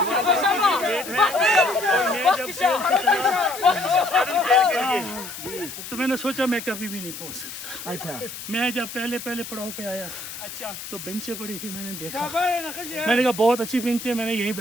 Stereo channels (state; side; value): noise; left; hiss, 10 dB below the sound